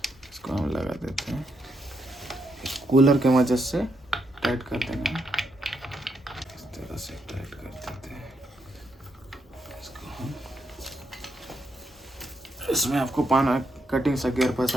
इसको हम लगा देते हैं। कूलर के मदद से टाइट कर देना है, इस तरह से टाइट कर देते हैं इसको हम। इसमें आपको पाना कटिंग सा गियर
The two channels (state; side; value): normal; both; correlation 0.79